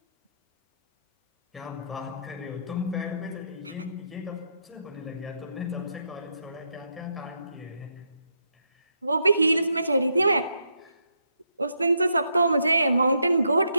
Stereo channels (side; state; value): both; inverted; correlation -0.78